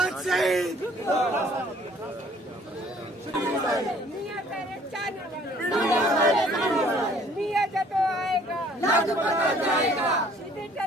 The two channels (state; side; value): normal; both; correlation 0.57